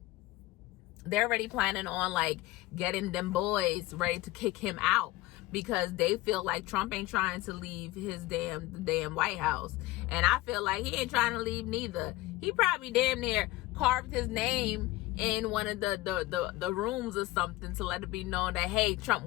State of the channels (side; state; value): right; quieter; 18.3 dB